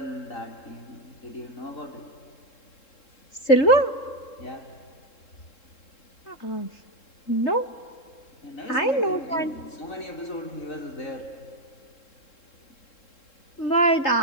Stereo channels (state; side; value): late; right; 3.7 ms